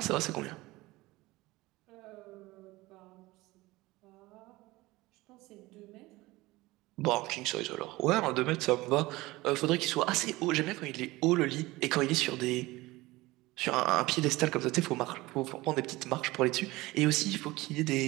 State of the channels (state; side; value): quieter; left; 20.0 dB